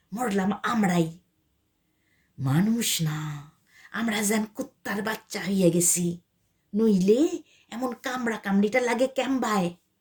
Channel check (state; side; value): identical; both; correlation 1.00